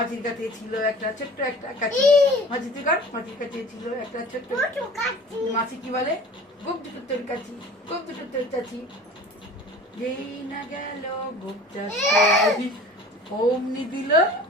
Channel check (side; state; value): both; normal; correlation 0.43